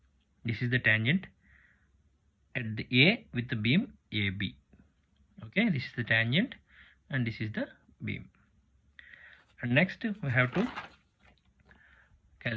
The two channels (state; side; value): identical; both; correlation 1.00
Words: This is the tangent at the A with the beam AB. Okay, this is the tangent and this is the beam. And next we have to